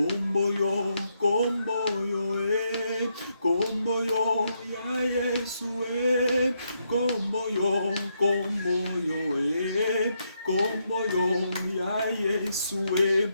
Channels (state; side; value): inverted; both; correlation -0.79